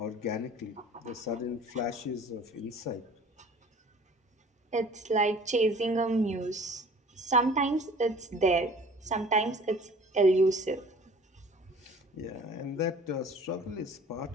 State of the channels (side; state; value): both; normal; correlation 0.48